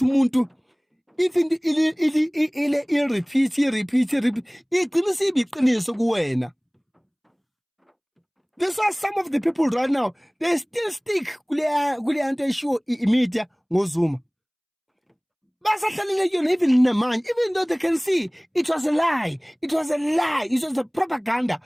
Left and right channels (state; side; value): identical; both; correlation 1.00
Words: umuntu even repeat igcina sibiqiniso kuwena. That's why some of the people right now, they still stick kule anto eshiwo media ngoZuma. Even in the mind, even though they can see it was a lie, it was a propaganda,